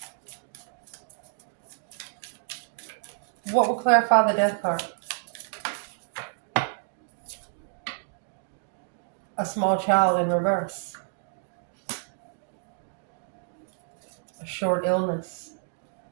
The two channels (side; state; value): left; silent; digital silence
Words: What will clarify the death card? A small child in reverse. A short illness.